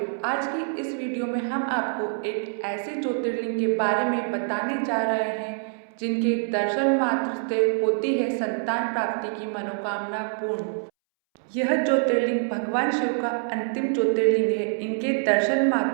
आज की इस वीडियो में हम आपको एक ऐसे ज्योतिर्लिंग के बारे में बताने जा रहे हैं जिनके दर्शन मात्र से होती है संतान प्राप्ति की मनोकामना पूर्ण। यह ज्योतिर्लिंग भगवान शिव का अंतिम ज्योतिर्लिंग है। इनके दर्शन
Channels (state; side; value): silent; left; 61 dB below the other